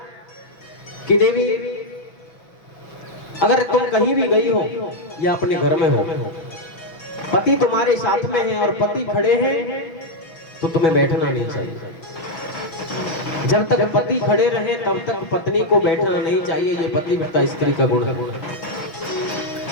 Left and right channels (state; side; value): late; right; 6.1 ms